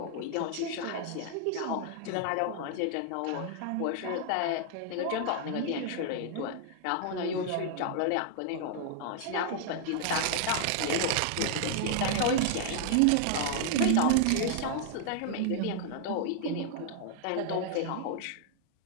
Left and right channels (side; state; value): both; different; correlation 0.00